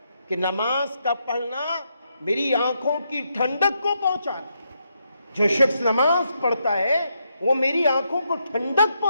کہ نماز کا پڑھنا میری آنکھوں کی ٹھنڈک کو پہنچاتا ہے۔ جو شخص نماز پڑھتا ہے وہ میری آنکھوں کو ٹھنڈک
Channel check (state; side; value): inverted; both; correlation -0.80